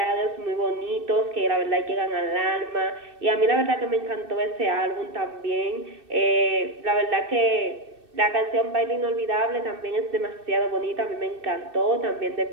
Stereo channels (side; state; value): left; late; 2.6 ms